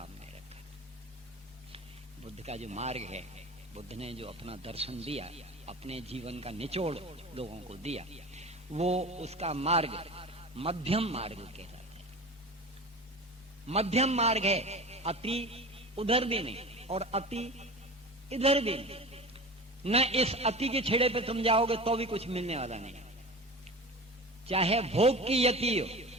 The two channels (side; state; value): both; normal; correlation 0.33